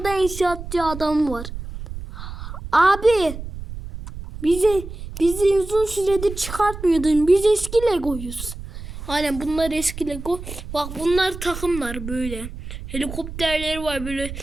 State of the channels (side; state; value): right; noise; rumble, 10 dB below the sound